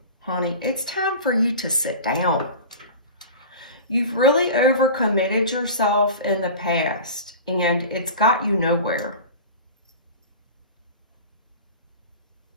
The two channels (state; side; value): inverted; both; correlation -0.34